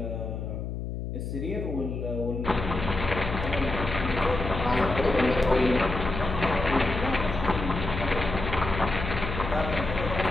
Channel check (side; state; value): left; noise; hum, 5 dB below the sound